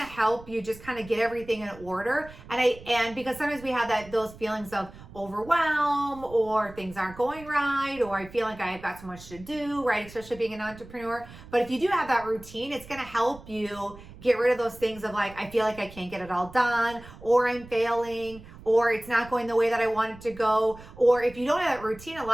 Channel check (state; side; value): noise; right; rumble, 18 dB below the sound